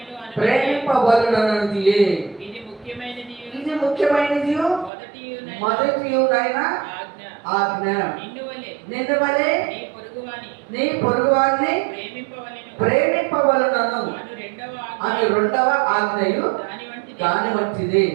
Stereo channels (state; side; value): drops out; left; at 4.9 s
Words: ప్రేమింపవలెనన్నది. ఇది ముఖ్యమైనది మొదటియునైన ఆజ్ఞ. నిన్ను వలె నీ పొరుగువారిని ప్రేమింపవలెనను అని 2వ ఆజ్ఞయు దాని వంటిది.